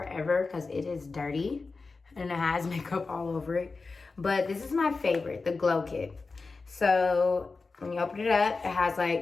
because it is dirty and it has makeup all over it. But this is my favorite, the Glow Kit. So when you open it up, it has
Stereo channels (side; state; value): right; quieter; 4.1 dB